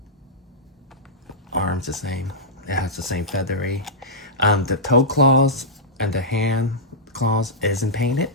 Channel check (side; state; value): both; normal; correlation -0.13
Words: Arms the same. It has the same feathery. The toe claws and the hand claws isn't painted.